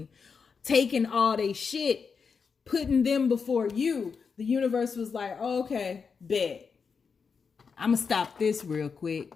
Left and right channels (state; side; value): quieter; right; 5.6 dB